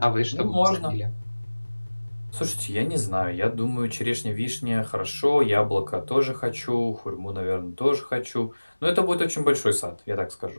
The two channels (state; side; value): inverted; both; correlation -1.00